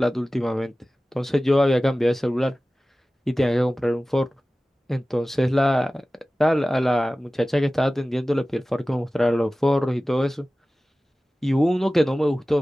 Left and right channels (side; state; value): both; normal; correlation 0.97